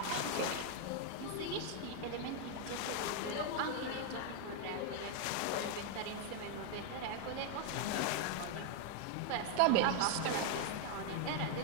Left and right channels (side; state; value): both; different; correlation 0.00